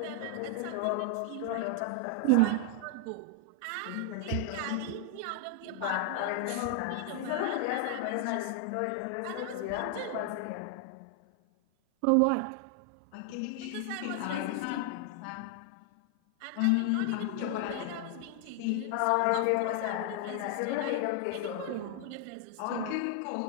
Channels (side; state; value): both; different; correlation 0.00